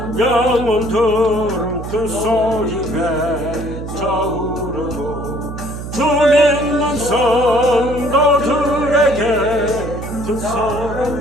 영혼들은 큰 소리 외쳐 부르고 주 믿는 성도들에게 큰 사랑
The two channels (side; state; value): right; noise; hum, 9 dB below the sound